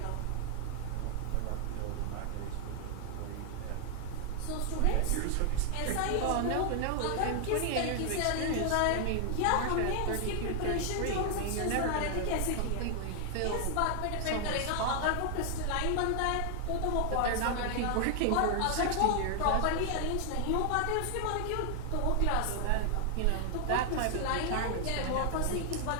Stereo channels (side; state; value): both; different; correlation 0.00